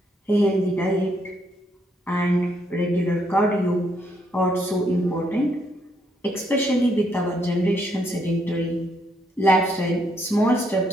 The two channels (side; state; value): both; normal; correlation 0.73